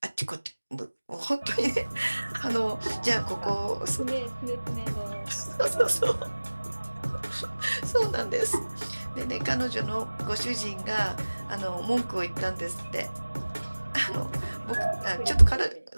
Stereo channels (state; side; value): inverted; both; correlation -1.00